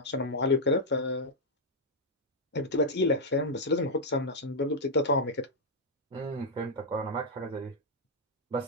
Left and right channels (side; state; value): both; normal; correlation -0.04